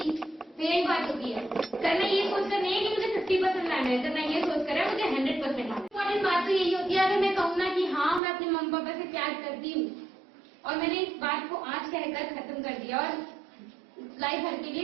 तो यही बात होती है। करना ये सोच कर नहीं है कि मुझे 50% लाना है, करना ये सोच कर है मुझे 100% लाना है। इम्पोर्टेंट बात तो यही होती है, अगर मैं कहूँ ना कि हाँ मैं अपने मम्मी पापा से प्यार करती हूँ और मैंने इस बात को आज कहकर खत्म कर दिया और लाइफ भर के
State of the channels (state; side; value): drops out; left; at 8.2 s